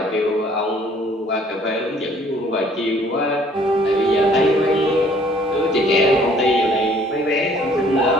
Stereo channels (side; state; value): both; normal; correlation 0.58